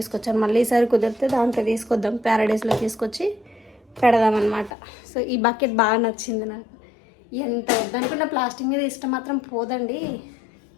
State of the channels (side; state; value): right; drops out; at 4.7 s